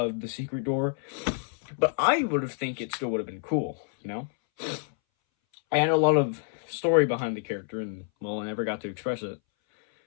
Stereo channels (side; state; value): right; silent; 59 dB below the other